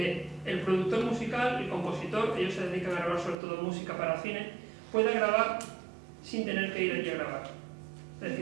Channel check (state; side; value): drops out; left; at 3.4 s